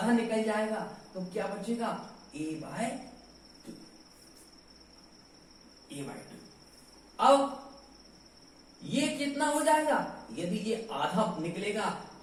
निकल जाएगा तो क्या बचेगा, a/2। अब ये कितना हो जाएगा, यदि ये आधा निकलेगा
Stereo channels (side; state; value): both; identical; correlation 1.00